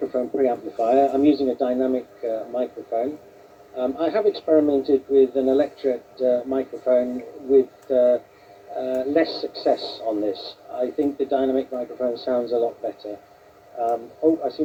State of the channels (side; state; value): both; identical; correlation 1.00